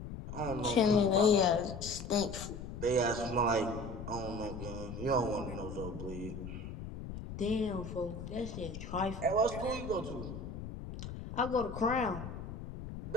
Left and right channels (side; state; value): left; noise; rumble, 9 dB below the sound